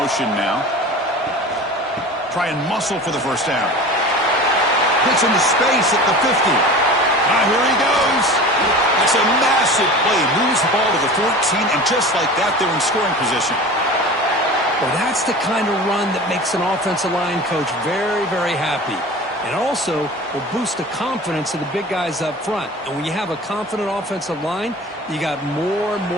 now. Try and muscle for the first down. Hits into space at the 50. Here he goes. That's a massive play. Moves the ball to the 14, and just like that, they're in scoring position. Well, that's the kind of run that makes an offensive line coach very, very happy. And also will boost the confidence of the big guys up front. And when you have a confident offensive line, you got more and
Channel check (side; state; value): both; normal; correlation 0.36